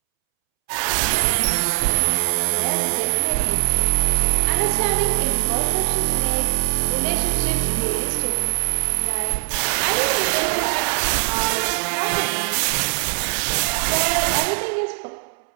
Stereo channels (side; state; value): left; silent; 65 dB below the other